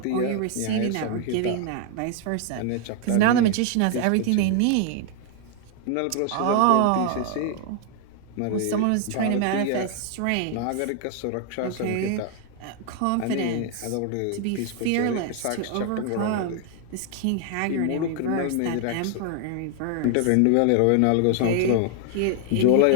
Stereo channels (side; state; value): both; different; correlation 0.00